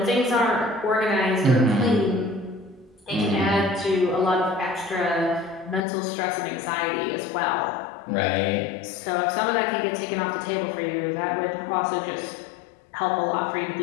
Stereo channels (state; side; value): drops out; right; at 5.9 s